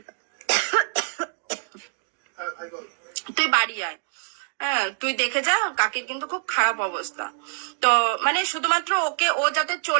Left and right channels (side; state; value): left; silent; 62 dB below the other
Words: তুই বাড়ি আয়। হ্যাঁ তুই দেখে যা, কাকির কিন্তু খুব খারাপ অবস্থা। তো মানে শুধুমাত্র ওকে, ও যাতে